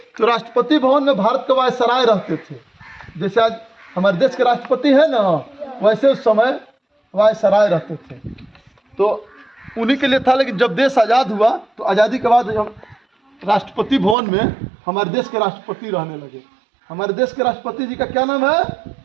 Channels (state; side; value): drops out; left; at 14.2 s